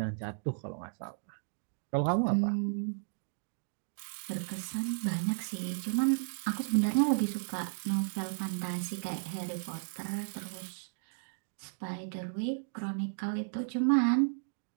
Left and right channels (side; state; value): left; silent; digital silence